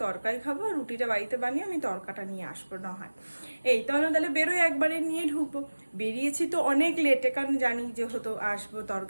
তরকারি খাবো, রুটিটা বাড়িতে বানিয়ে আমি তরকাটা নিয়ে আসবো না হয়। এই তাহলে বেরোয়, একবারে নিয়ে ঢুকবো। বেরিয়েছি তো অনেক লেটে, কারণ জানি যে হতো আসবো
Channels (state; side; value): inverted; both; correlation -1.00